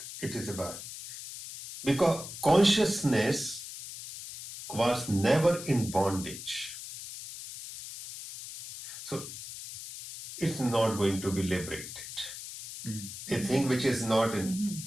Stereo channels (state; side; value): noise; left; hiss, 11 dB below the sound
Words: it is about, because consciousness was never in bondage, so it's not going to be liberated. A thing which is not